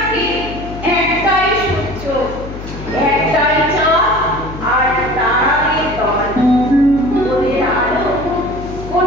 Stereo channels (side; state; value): left; noise; hum, 11 dB below the sound